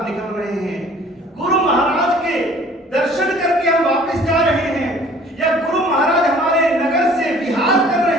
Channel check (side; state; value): both; normal; correlation 0.52